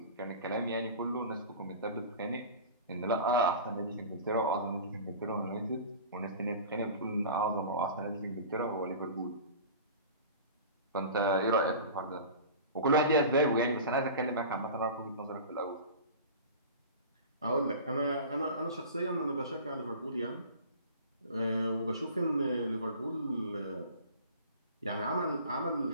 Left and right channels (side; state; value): both; inverted; correlation -0.37